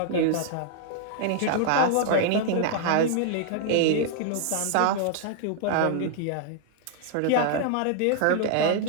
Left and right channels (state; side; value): different; both; correlation 0.00